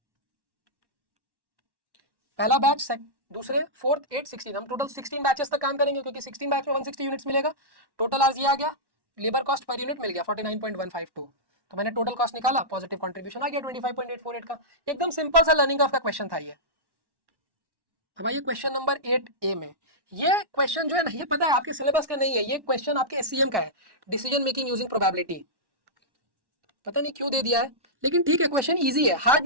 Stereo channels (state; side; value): late; left; 1.1 ms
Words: पहला बैच, दूसरे, फोर्थ, 8, 16, हम टोटल 16 बैचेस तक काम करेंगे क्योंकि 16 बैच में 160 यूनिट्स मिलेगा। टोटल आज ये आ गया, लेबर कॉस्ट पर यूनिट मिल गया 49.152, तो मैंने टोटल कॉस्ट निकाला, पॉजिटिव कंट्रीब्यूशन आ गया 25.848 का। एकदम सिंपल सा लर्निंग ऑफ का क्वेश्चन था ये। अब आइए क्वेश्चन नंबर 8A में, ये क्वेश्चन जो है ना ये पता है आपके सिलेबस का नहीं है, ये क्वेश्चन आपके एससीएम का है, डिसीजन मेकिंग यूजिंग प्रोबेबिलिटी, पता नहीं क्यों दे दिया है, लेकिन ठीक है क्वेश्चन इजी है, हार्ड